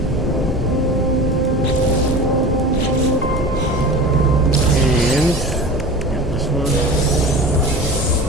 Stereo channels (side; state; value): both; normal; correlation 0.34